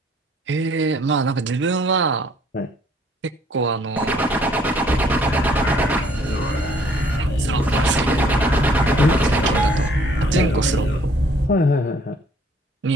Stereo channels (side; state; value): both; normal; correlation 0.61